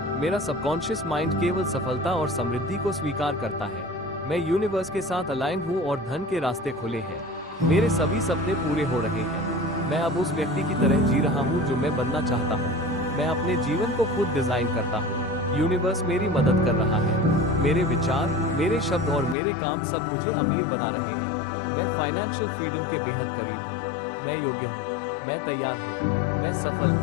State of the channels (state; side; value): drops out; right; at 19.4 s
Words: मेरा सबकॉन्शियस माइंड केवल सफलता और समृद्धि को स्वीकार करता है। मैं यूनिवर्स के साथ अलाइन हूँ और धन के रास्ते खुले हैं। मेरे सभी सपने पूरे हो रहे हैं। मैं अब उस व्यक्ति की तरह जी रहा हूँ जो मैं बनना चाहता हूँ। मैं अपने जीवन को खुद डिजाइन करता हूँ। यूनिवर्स मेरी मदद कर रहा है। मेरे विचार, मेरे शब्द और मेरे काम सब मुझे अमीर बना रहे हैं। मैं फाइनेंशियल फ्रीडम के बेहद करीब हूँ। मैं योग्य हूँ। मैं तैयार हूँ। मैं सफल